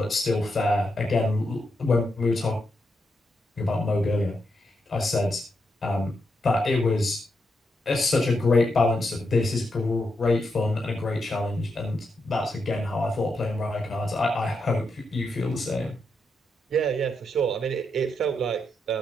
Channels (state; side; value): normal; both; correlation 0.83